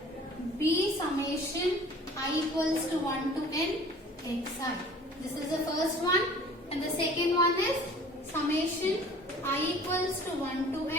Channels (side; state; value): both; normal; correlation 0.48